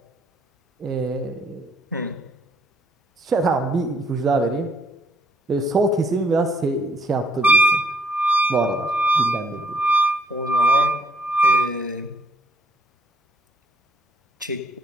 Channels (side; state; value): both; normal; correlation 0.68